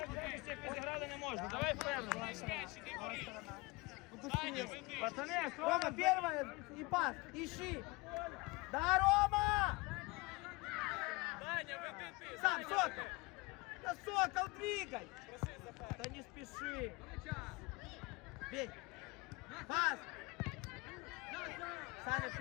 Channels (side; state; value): right; quieter; 24.8 dB